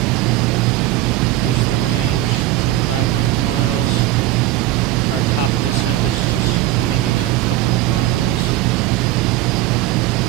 Reduce the range, 25 nautical miles. Our top of descent is just coming in a couple of miles.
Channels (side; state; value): left; quieter; 15.0 dB